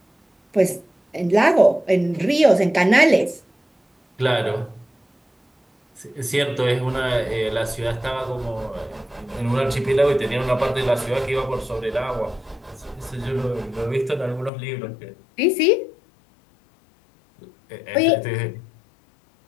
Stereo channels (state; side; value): drops out; right; at 14.5 s